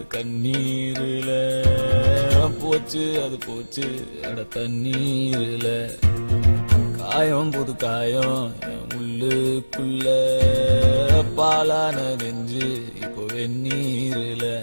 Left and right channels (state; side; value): inverted; both; correlation -1.00